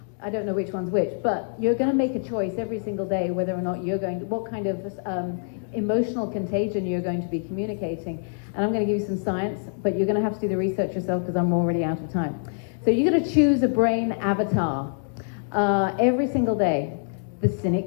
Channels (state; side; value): silent; right; digital silence